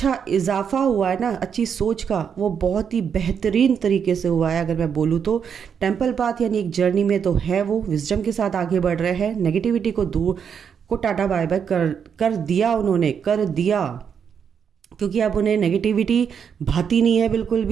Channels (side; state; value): left; quieter; 7.3 dB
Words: इजाफा हुआ है ना, अच्छी सोच का, वो बहुत ही बेहतरीन तरीके से हुआ है। अगर मैं बोलूँ तो टेम्पल पाथ यानी एक जर्नी में तो है, वो विजडम के साथ आगे बढ़ रहे हैं, नेगेटिविटी को दूर को टाटा बाय बाय कर दिया उन्होंने, कर दिया, क्योंकि अब उन्हें नेगेटिविटी भाती नहीं है बिल्कुल